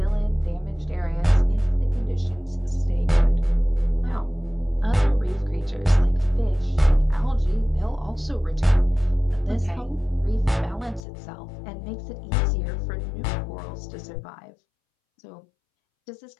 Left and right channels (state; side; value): drops out; right; at 11.0 s